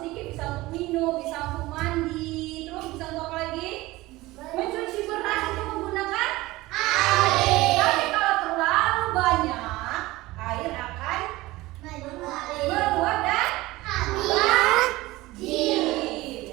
sedikit bisa untuk minum, bisa untuk mandi, terus bisa untuk apa lagi? Mencuci beras itu menggunakan air. Tapi kalau terlalu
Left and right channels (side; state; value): left; quieter; 19.2 dB